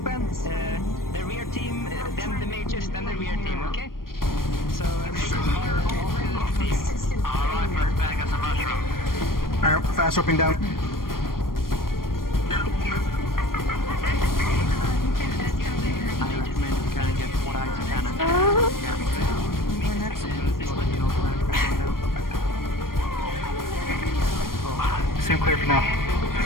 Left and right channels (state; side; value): late; right; 0.91 ms